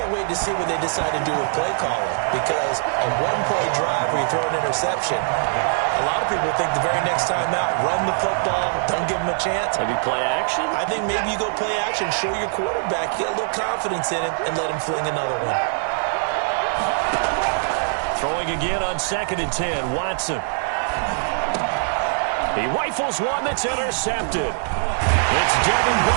wait to see what they decide to do with play calling. Because a 1-play drive where you throw an interception, a lot of people think the very next time out, run the football, don't give them a chance. Maybe play action? I think maybe you go play action, show your quarterback, get a little confidence in him, and let him fling another one. Throwing again on 2nd and 10, Watson. He rifles one that's intercepted. It's Devin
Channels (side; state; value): left; silent; digital silence